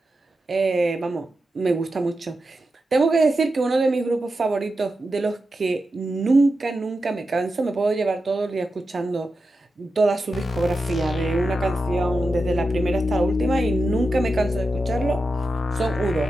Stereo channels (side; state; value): both; normal; correlation 0.90